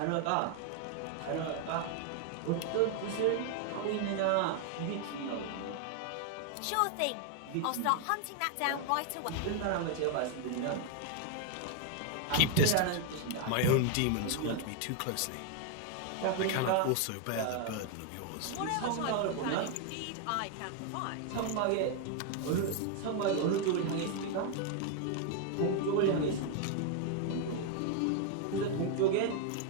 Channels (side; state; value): both; different; correlation 0.00